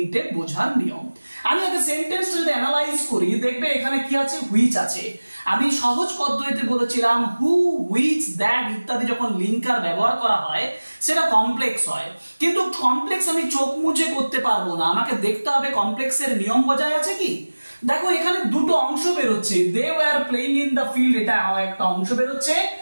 বোঝার নিয়ম। আমি আগে সেন্টেন্সটা যদি অ্যানালাইজ করি, দেখবে এখানে কি আছে, হুইচ আছে। আমি সহজ পদ্ধতিতে বলেছিলাম হু, হুইচ, দ্যাট ইত্যাদি যখন লিঙ্কার ব্যবহার করা হয় সেটা কমপ্লেক্স হয়। কিন্তু কমপ্লেক্স আমি চোখ মুছে করতে পারবো না, আমাকে দেখতে হবে কমপ্লেক্সের নিয়ম বজায় আছে কি। দেখো এখানে দুটো অংশ বেরোচ্ছে, they were playing in the field এটা একটা অংশ বেরোচ্ছে,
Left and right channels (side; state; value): both; inverted; correlation -1.00